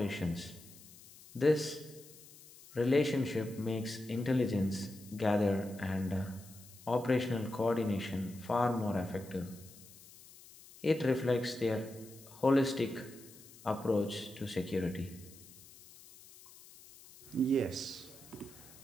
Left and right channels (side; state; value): left; noise; hiss, 20 dB below the sound